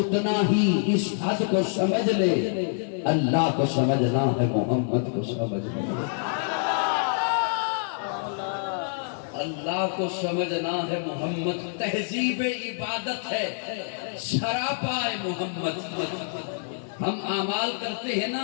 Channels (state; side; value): silent; right; digital silence